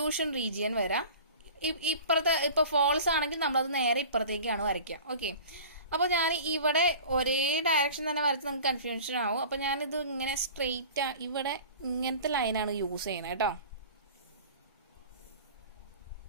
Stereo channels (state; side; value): inverted; both; correlation -0.40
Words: റീജിയൻ വരാം. ഇപ്പുറത്തെ ഇപ്പോൾ ഫോൾസ് ആണെങ്കിൽ നമ്മളത് നേരെ ഇപ്പുറത്തേക്കാണ് വരയ്ക്കുക. ഓക്കെ, അപ്പോൾ ഞാൻ ഇവിടെ ഒരേ ഡയറക്ഷൻ തന്നെ വരച്ച് നമുക്ക് കൺഫ്യൂഷൻ ആവും. അപ്പോൾ ഞാനിത് ഇങ്ങനെ സ്ട്രെയിറ്റ് ഇവിടെ ഇങ്ങനത്തെ ലൈനാണ് യൂസ് ചെയ്യുന്നത് കേട്ടോ.